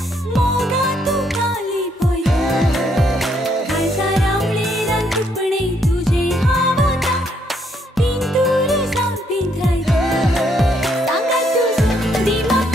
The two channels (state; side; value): normal; both; correlation 0.72